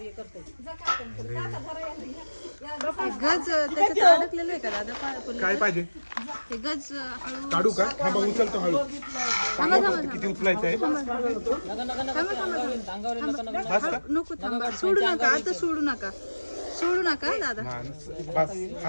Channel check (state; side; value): inverted; both; correlation -1.00